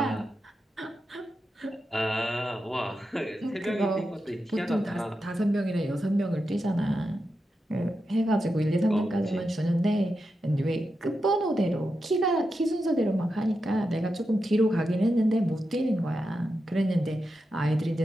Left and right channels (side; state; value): both; normal; correlation 0.88